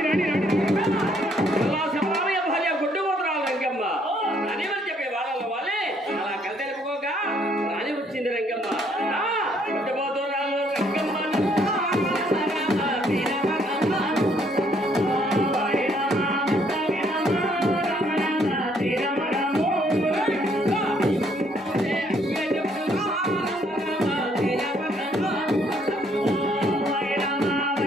రాని రాని శబరామయ్య భార్య గుడ్డు పోతురాలు రంగమ్మ అని వాళ్ళు చెప్పే వాళ్ళ వాళ్ళే అలా కలితెలుపుకోగా రాని వచ్చింది రంగమ్మ. గుడ్డు పోతురాలు రంగమ్మ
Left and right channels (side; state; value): both; normal; correlation 0.67